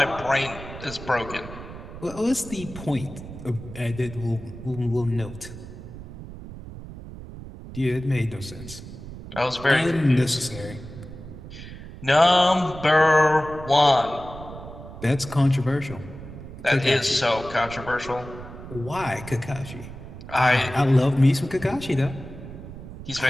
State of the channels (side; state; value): right; noise; rumble, 13 dB below the sound